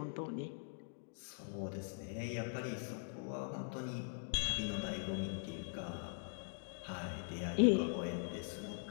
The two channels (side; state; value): right; silent; digital silence